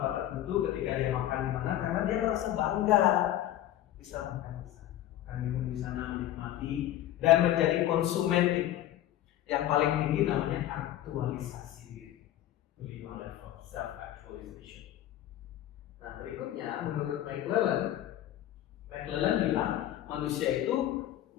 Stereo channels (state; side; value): quieter; right; 12.9 dB